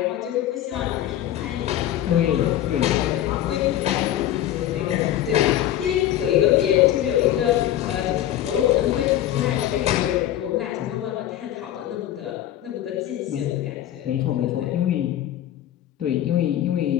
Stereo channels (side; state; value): right; quieter; 12.3 dB